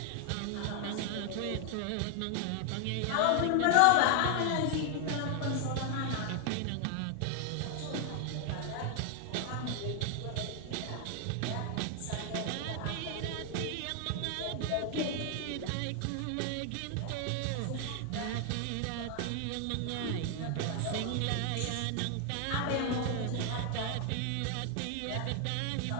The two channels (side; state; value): both; different; correlation 0.00